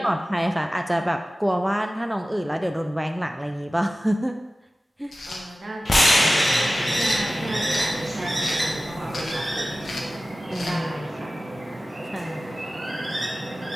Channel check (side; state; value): both; normal; correlation 0.96